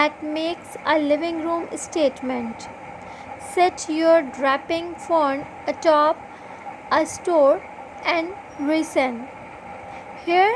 makes a living room statement. Set your draping fern atop a store and reason.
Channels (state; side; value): identical; both; correlation 1.00